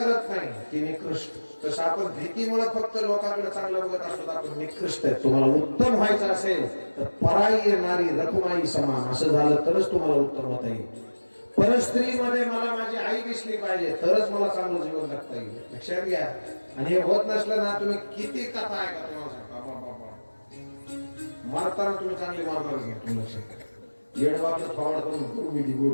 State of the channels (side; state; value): both; inverted; correlation -1.00